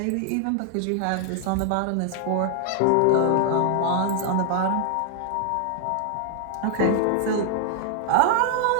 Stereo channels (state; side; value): different; both; correlation 0.00